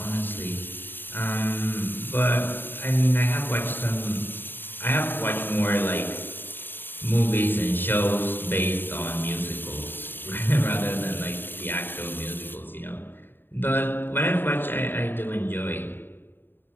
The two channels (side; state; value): right; late; 0.096 ms